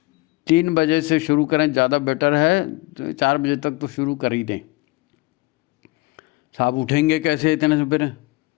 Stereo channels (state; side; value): quieter; right; 22.3 dB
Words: 3 बजे से शुरू करें, ज़्यादा बेटर है। तो 4 बजे तक तो शुरू कर ही दें। साहब उठेंगे कैसे इतने सवेरे?